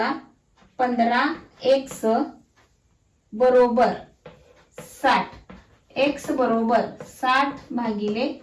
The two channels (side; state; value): both; identical; correlation 1.00